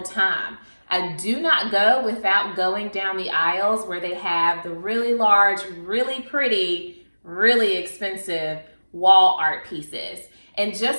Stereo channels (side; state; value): both; inverted; correlation -1.00